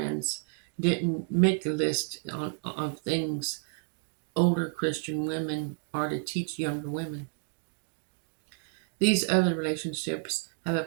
didn't make a list of things older Christian women are to teach younger women. These other relationships have a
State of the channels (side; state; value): left; silent; 57 dB below the other